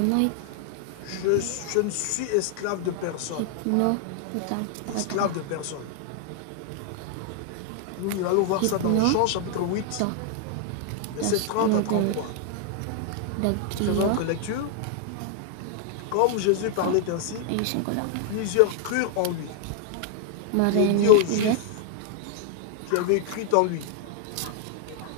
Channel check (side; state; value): both; different; correlation 0.00